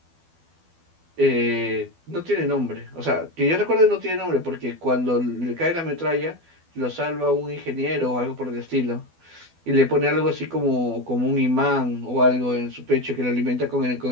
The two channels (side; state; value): left; late; 12 ms